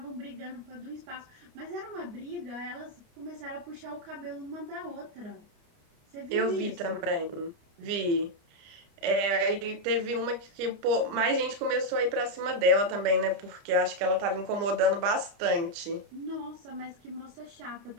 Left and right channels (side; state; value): left; late; 29 ms